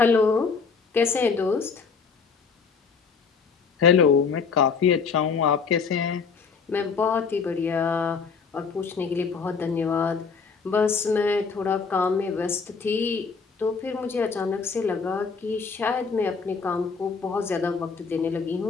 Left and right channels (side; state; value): right; quieter; 5.4 dB